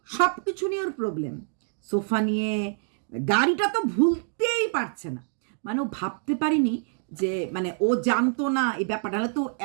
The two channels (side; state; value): left; silent; 60 dB below the other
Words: সব কিছু নিয়ে ওর প্রবলেম, সোফা নিয়ে, গাড়িটা তো ভুলতেই পারছে না। মানে ও ভাবতে পারিনি যে মানে ও জানতো না এই ব্যাপারটা, হলে তো